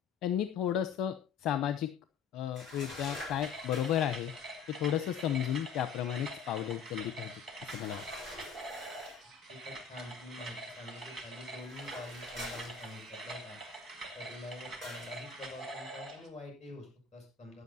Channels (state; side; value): quieter; right; 7.1 dB